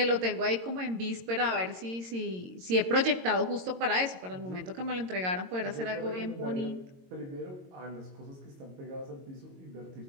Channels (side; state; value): left; late; 22 ms